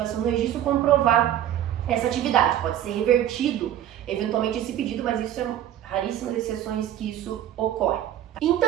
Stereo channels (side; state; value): left; quieter; 11.3 dB